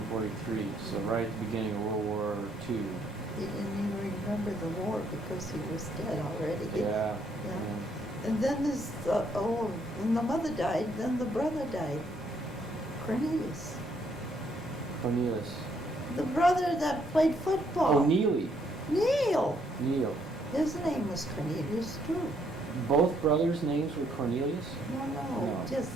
so right at the beginning of World War II. He didn't even remember the war because he was dead already. Yeah. And then when the mother died, then the brother died. Cornelius. Cornelius. The brother that played football. Oh, Neely. Neil. Neil. His name was Cornelius too. Both brothers' names were Cornelius? No, No. just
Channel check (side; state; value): both; normal; correlation 0.70